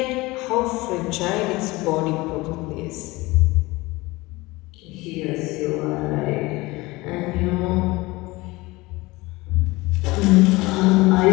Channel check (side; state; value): right; quieter; 21.6 dB